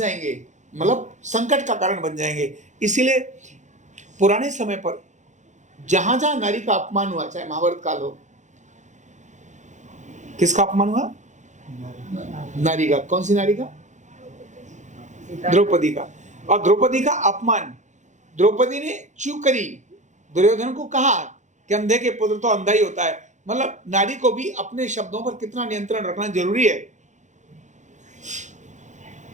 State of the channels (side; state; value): left; late; 0.35 ms